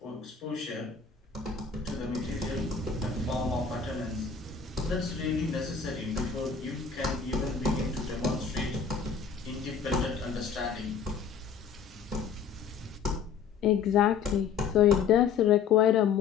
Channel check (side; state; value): right; quieter; 6.4 dB